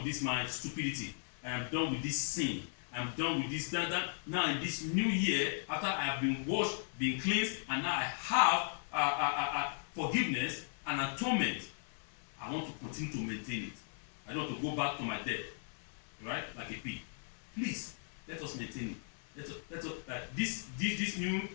this my stupidity. I am done with this sin. I'm done with this, that. Now in this new year, after I have been washed, been cleansed, and now I have forgiveness and atonement, I want to continue to maintain it. I don't want to go back to my death, right? Like a pig. Please, let us maintain it. Let us this new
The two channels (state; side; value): silent; right; 53 dB below the other